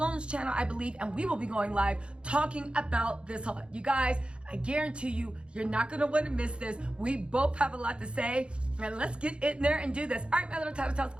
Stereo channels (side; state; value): left; late; 0.056 ms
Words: channel, I believe, and we will be going live talking about this a lot. You guys, I guarantee you, you're not going to want to miss this. We both have a lot to say. And let's get in there and do this. All right, my little Tattle Tells.